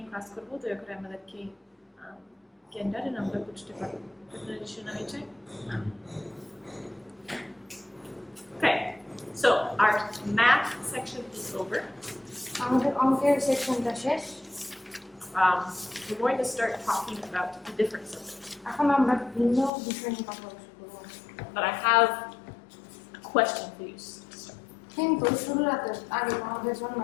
ক্লাস করবো, দয়া করে আমাদেরকে জ্ঞানটা আমরা বুঝতে পারবো। আপনাদের শোনা হয়েছে? Okay, so our math section is over. আমাদের অঙ্কের সেকশনটা শেষ। We're going to start talking about the different subjects. এখন আমরা ভিন্ন বিষয় নিয়ে কথা বলবো। But I have a question for you. কিন্তু শুরুর আগে আমাদের জন্য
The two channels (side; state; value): right; drops out; at 19.7 s